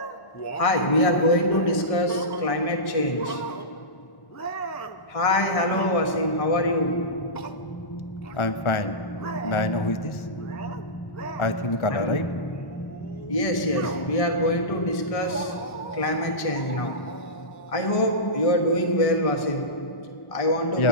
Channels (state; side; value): late; right; 1.1 ms